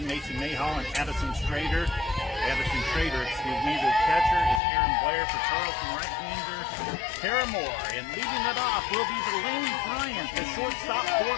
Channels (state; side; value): drops out; right; at 4.6 s